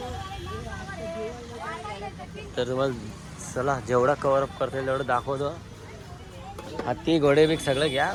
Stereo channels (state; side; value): identical; both; correlation 1.00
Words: तर तुम्हाला चला जेवढा कव्हर अप करता येईल तेवढं दाखवतो. हत्ती घोडे बिग सगळं घ्या